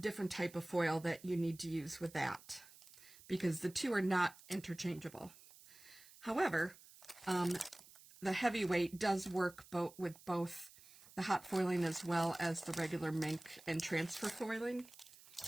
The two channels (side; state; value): right; noise; hiss, 21 dB below the sound